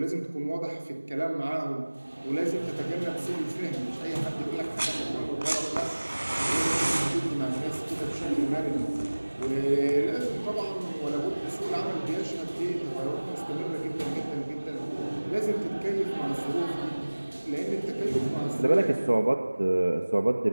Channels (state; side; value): inverted; both; correlation -1.00